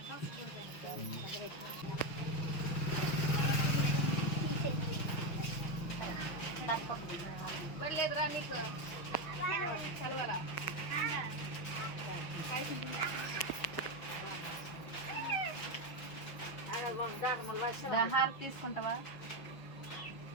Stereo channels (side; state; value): right; late; 6.0 ms